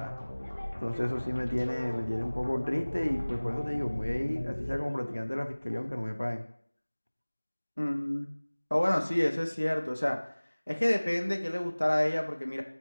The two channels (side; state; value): both; inverted; correlation -1.00